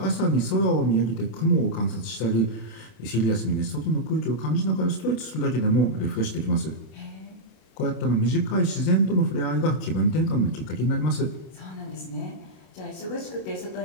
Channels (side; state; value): right; late; 32 ms